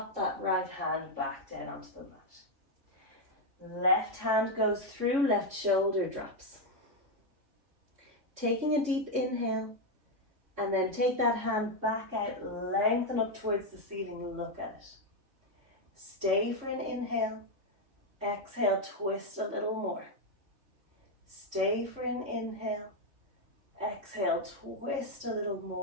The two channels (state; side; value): late; left; 3.6 ms